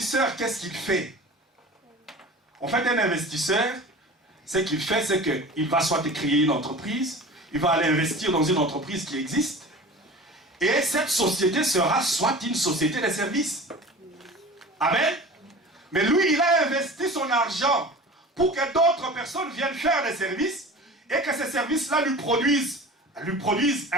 qu'est-ce qu'il fait? En fait, un investisseur, ce qu'il fait, c'est qu'il va soit créer une entreprise, il va aller investir dans une entreprise qui existe, et cette société sera soit une société de services. Amen. Mais lui, il a investi son argent pour que d'autres personnes viennent faire des services et que ces services-là lui produisent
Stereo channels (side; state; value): both; normal; correlation 0.38